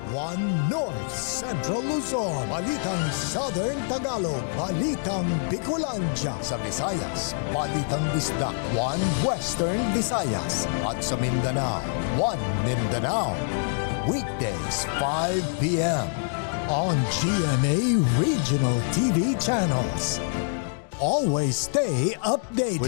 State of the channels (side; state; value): right; silent; digital silence